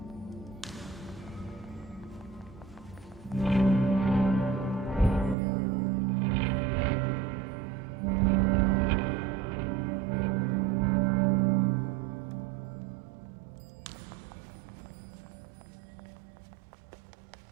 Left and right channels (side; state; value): left; drops out; at 5.4 s